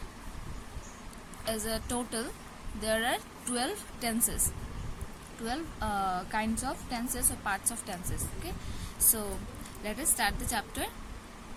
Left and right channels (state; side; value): identical; both; correlation 1.00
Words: as a total there are 12 tenses, 12 kinds of tenses or parts of tenses. Okay, so let us start the chapter.